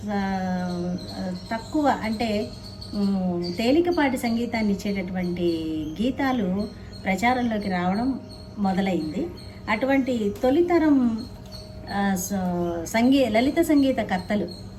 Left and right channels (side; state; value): both; identical; correlation 1.00